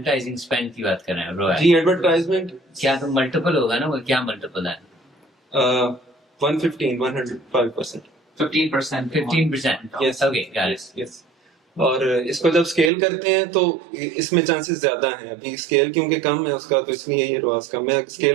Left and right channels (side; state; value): left; drops out; at 12.9 s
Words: स्पेंड की बात कर रहे हैं ROAS। जी एडवर्टाइजमेंट क्या तो मल्टीपल होगा ना, वो क्या मल्टीपल है? 105%। 15%. 15%। Yes. Okay, got it. Yes. और इसको जब स्केल करते हैं तो इसमें चांसेस ज्यादा हैं। अभी स्केल क्योंकि कम है उसका, तो इसलिए ये रोआस कम है।